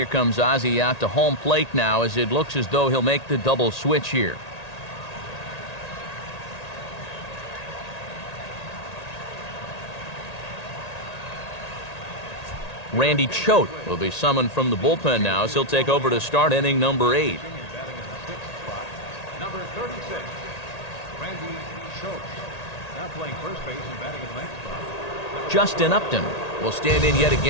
comes Ozzie out to home plate now, as it looks as though he'll make the double switch here. Randy Choate will be summoned from the bullpen now, as he'll take over to start inning number 8. Number 36, Randy Choate. Now playing first base and batting in the ninth spot. Justin Upton will stand in yet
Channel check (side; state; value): right; late; 1.8 ms